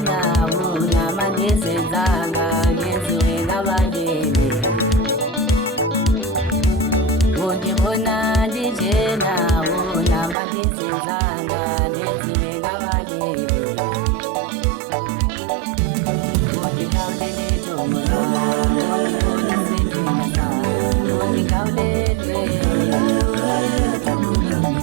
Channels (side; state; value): left; drops out; at 10.4 s